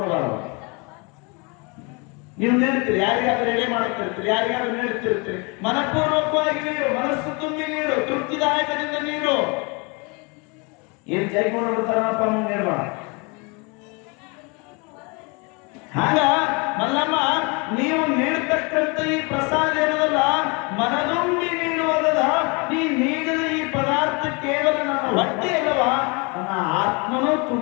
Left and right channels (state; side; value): quieter; right; 30.6 dB